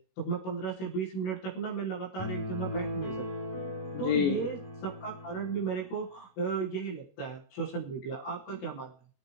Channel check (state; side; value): late; right; 22 ms